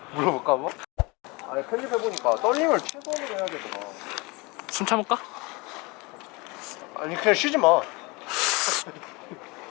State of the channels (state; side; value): quieter; right; 26.1 dB